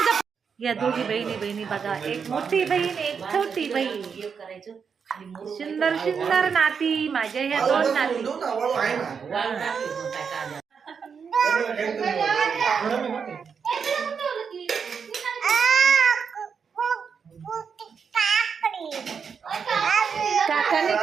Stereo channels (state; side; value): quieter; left; 6.3 dB